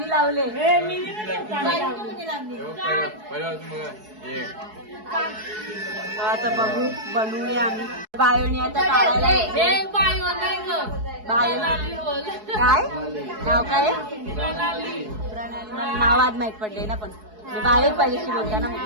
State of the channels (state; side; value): late; left; 4.7 ms